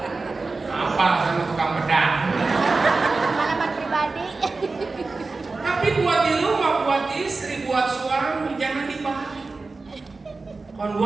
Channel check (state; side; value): quieter; left; 3.8 dB